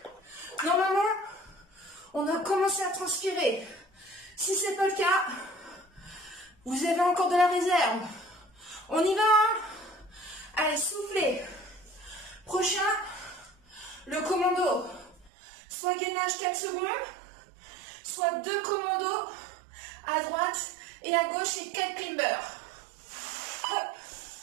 Normalement, on a commencé à transpirer. Si ce n'est pas le cas, vous avez encore de la réserve. On y va, hein? Allez, soufflez. Prochain, le commando. Soit gainage 4 secondes, soit 2 commandos à droite et à gauche et 4 climbers. Hop.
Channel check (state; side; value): drops out; left; at 15.3 s